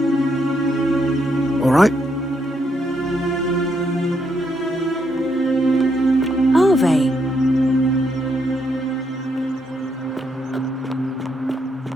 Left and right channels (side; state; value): both; normal; correlation 0.77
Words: All right? Arve.